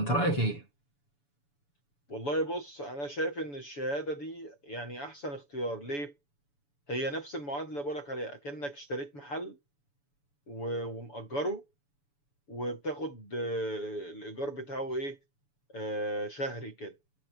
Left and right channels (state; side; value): late; right; 7.0 ms